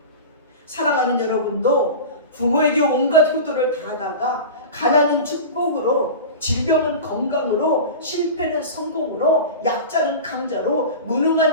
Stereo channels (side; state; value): both; inverted; correlation -0.30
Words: 사랑하는 여러분도 부모에게 온갖 효도를 다하다가 가난은 축복으로, 질병은 건강으로, 실패는 성공으로, 약자는 강자로,